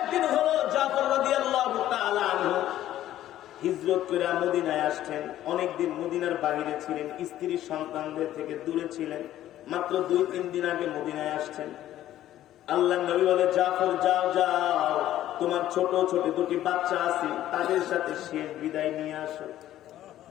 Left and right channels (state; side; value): quieter; right; 13.0 dB